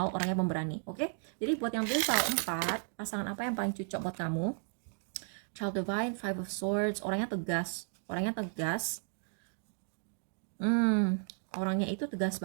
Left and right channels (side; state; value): left; silent; 55 dB below the other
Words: orangnya pemberani. Oke? Jadi buat yang pilih soal 4, pasangan apa yang paling cocok buat kamu? Child Divine, Five of Swords, orangnya tegas. Orangnya itu tegas